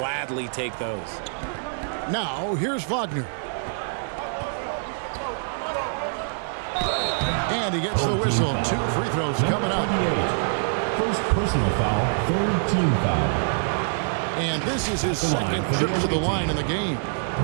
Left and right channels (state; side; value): silent; left; digital silence